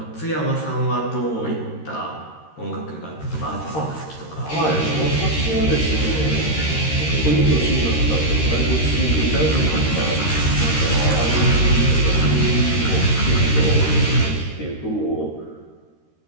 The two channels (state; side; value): late; right; 13 ms